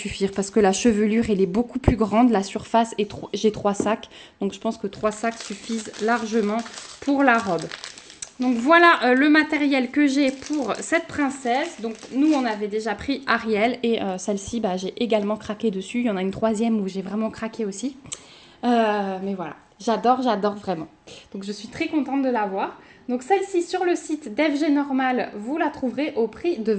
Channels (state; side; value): identical; both; correlation 1.00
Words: Parce que la chevelure, elle est beaucoup plus grande, la surface, et j'ai 3 sacs. Donc je pense que 3 sacs suffisent largement pour la robe. Donc voilà le matériel que j'ai pour cette princesse. Donc nous on avait déjà pris Ariel et celle-ci j'ai également craqué dessus. Il y en a une 3e où j'ai vraiment craqué aussi. Mais voilà, j'adore vraiment. Donc je suis très contente de l'avoir. Donc celle-ci sur le site d'FG Normal, vous la trouverez au prix de